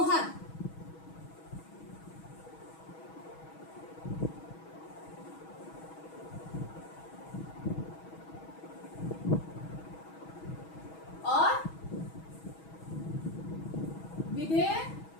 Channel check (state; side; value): late; right; 6.2 ms